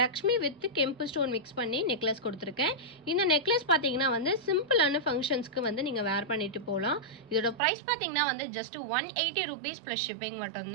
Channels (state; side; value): drops out; left; at 7.6 s